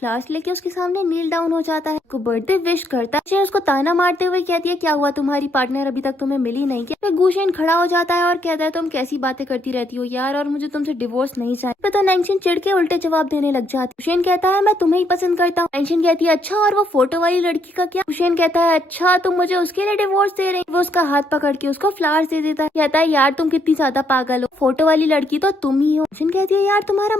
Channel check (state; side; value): normal; both; correlation 0.73